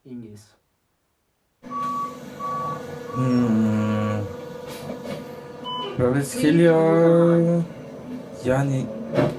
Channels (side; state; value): both; identical; correlation 1.00